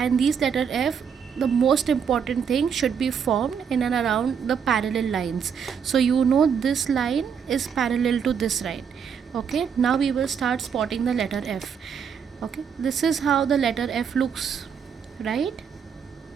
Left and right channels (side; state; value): left; quieter; 7.1 dB